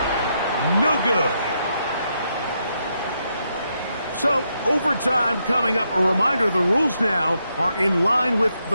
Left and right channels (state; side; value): inverted; both; correlation -0.80